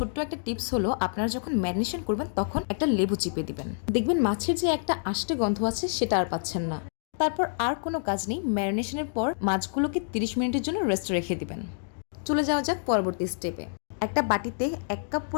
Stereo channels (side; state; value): right; silent; digital silence